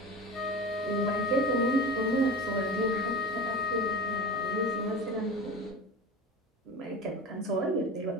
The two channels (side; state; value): both; normal; correlation 0.30